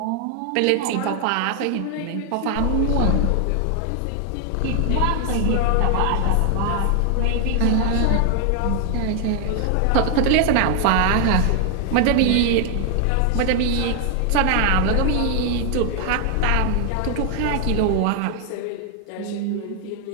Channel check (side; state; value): both; different; correlation 0.00